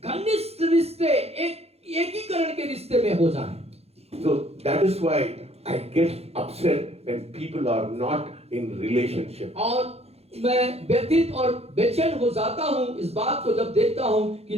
घनिष्ठ रिश्ते, एक एकीकरण के रिश्ते में हो जाएं। So that is why I get upset when people are not in relationship. और मैं व्यथित और बेचैन हो जाता हूँ इस बात को जब देखता हूँ कि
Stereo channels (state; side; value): late; left; 0.30 ms